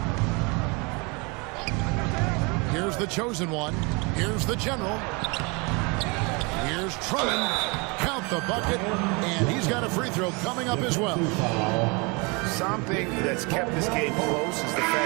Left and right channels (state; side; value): quieter; left; 29.2 dB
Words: Here's the chosen one. Here's the general. Here's Drummond. Count the bucket. And he's got a free throw coming up as well. Something that's kept this game close is the